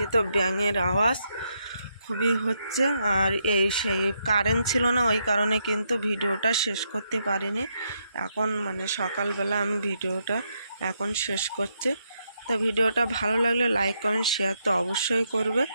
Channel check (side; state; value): both; inverted; correlation -0.79